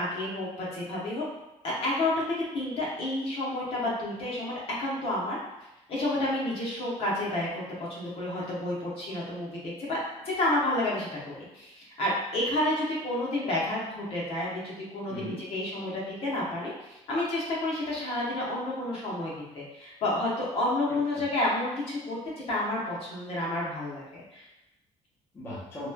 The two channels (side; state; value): both; normal; correlation 0.40